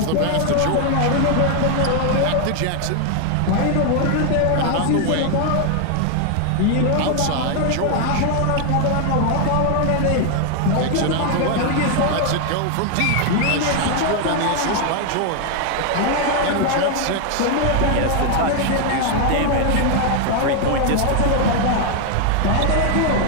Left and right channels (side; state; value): both; different; correlation 0.00